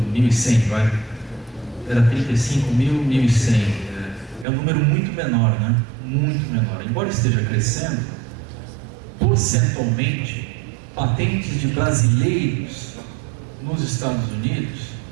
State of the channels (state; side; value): drops out; left; at 4.5 s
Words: 1.100, vai. Era 35 mil, 1.100. É um número muito menor, né? Muito menor. Embora esteja crescendo, percentualmente, patentes de brasileiros nos Estados Unidos